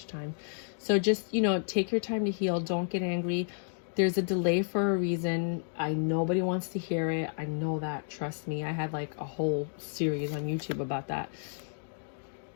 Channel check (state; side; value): silent; right; digital silence